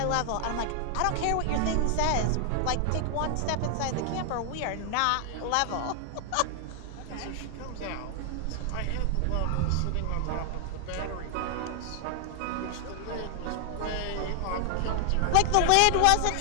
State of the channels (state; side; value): different; both; correlation 0.00